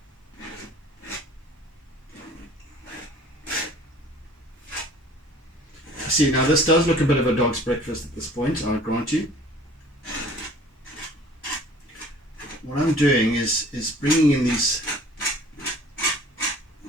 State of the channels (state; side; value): normal; both; correlation 0.50